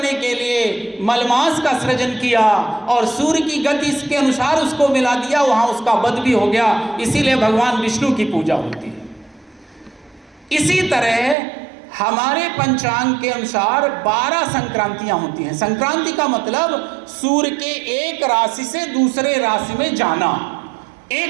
के लिए मलमास का सृजन किया, और सूर्य की गति के अनुसार उसको मिला दिया, वहां उसका वध भी हो गया। इसीलिए भगवान विष्णु की पूजा होती है। इसी तरह हमारे पंचांग के अनुसार 12 संक्रांतियां होती हैं। संक्रांति का मतलब सूर्य के एक राशि से दूसरे राशि में जाना।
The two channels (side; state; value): left; drops out; at 11.4 s